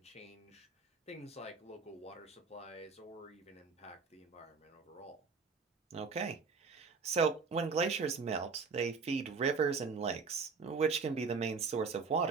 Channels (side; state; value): left; quieter; 5.0 dB